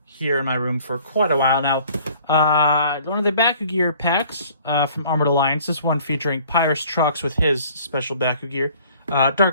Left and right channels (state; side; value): inverted; both; correlation -0.54